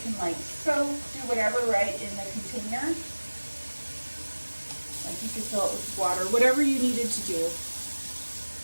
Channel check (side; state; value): both; inverted; correlation -1.00